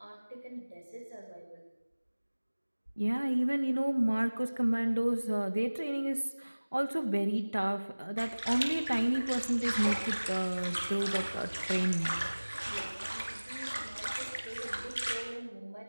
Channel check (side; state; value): both; inverted; correlation -1.00